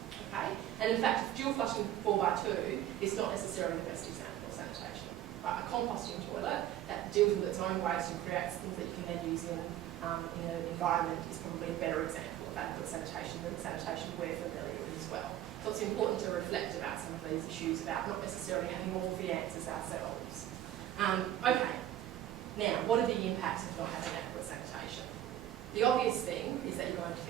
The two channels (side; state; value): left; quieter; 12.4 dB